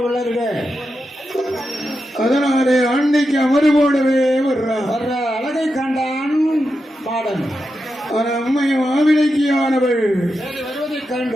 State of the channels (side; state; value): both; normal; correlation 0.88